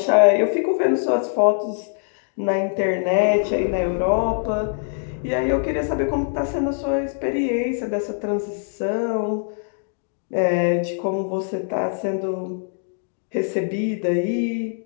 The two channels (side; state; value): right; silent; digital silence